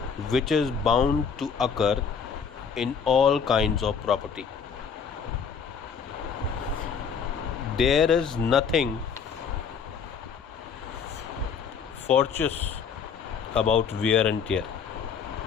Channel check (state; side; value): quieter; right; 6.5 dB